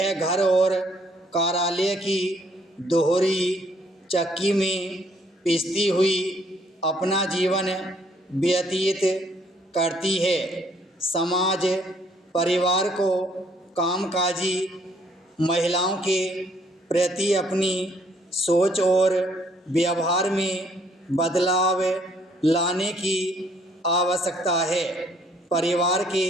घर और कार्यालय की दोहरी चक्की में पिसती हुई अपना जीवन व्यतीत करती है। समाज परिवार को कामकाजी महिलाओं के प्रति अपनी सोच और व्यवहार में बदलाव लाने की आवश्यकता है। परिवार के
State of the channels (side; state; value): both; normal; correlation 0.65